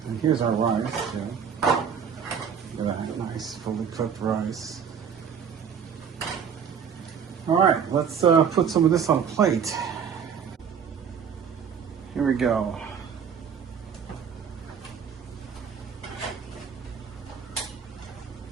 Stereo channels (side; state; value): left; quieter; 7.2 dB